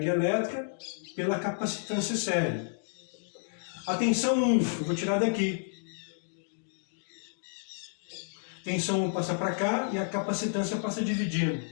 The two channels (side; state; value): right; silent; digital silence